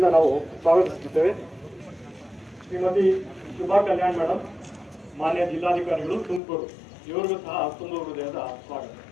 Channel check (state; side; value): drops out; right; at 6.4 s